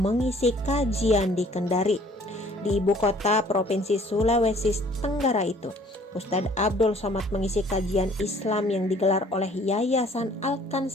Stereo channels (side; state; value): both; normal; correlation 0.56